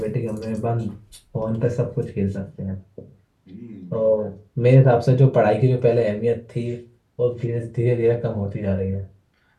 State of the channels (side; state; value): both; identical; correlation 1.00